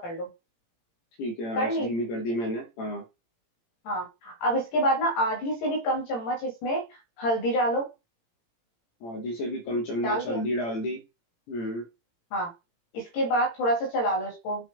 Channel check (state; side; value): late; right; 18 ms